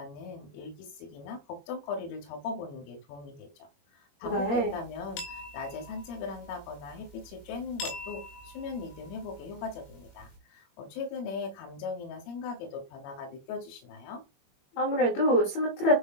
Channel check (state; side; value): late; right; 21 ms